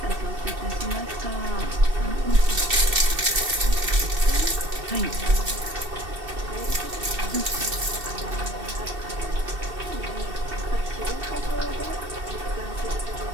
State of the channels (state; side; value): late; left; 2.7 ms